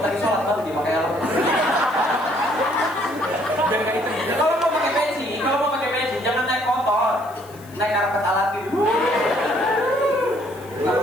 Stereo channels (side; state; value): left; noise; hiss, 24 dB below the sound